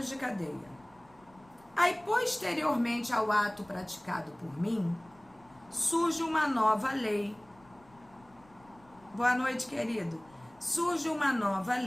de cadeia. Aí, posteriormente ao ato praticado por mim, surge uma nova lei. Boa noite, querido. Surge uma nova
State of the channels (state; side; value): noise; left; rumble, 28 dB below the sound